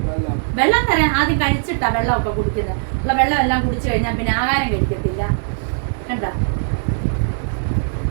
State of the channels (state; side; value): silent; left; digital silence